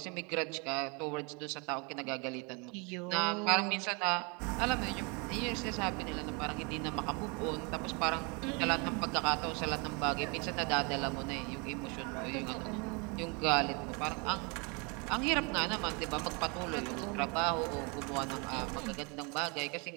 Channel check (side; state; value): left; quieter; 31.3 dB